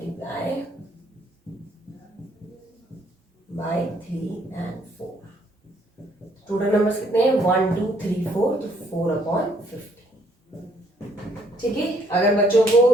by 3 and 4। Total numbers कितने हैं 1 2 3 4, तो 4 अपॉन 50। ठीक है, अगर बच्चों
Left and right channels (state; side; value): normal; both; correlation 0.66